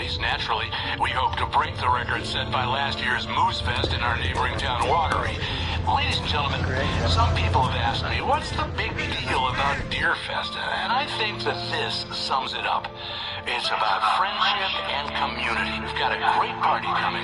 Naturally, we hope to break the record set by last year's Moose Fest in our neighboring town, Watery. Ladies and gentlemen, some people have asked me, what's the big deal about Deerfest? And I think that this sums it up. It's about friendship and community. We've got a great party coming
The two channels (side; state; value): both; identical; correlation 1.00